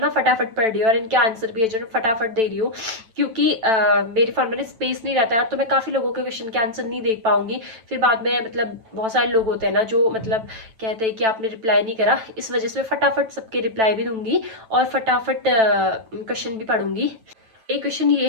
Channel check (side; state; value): left; late; 9.0 ms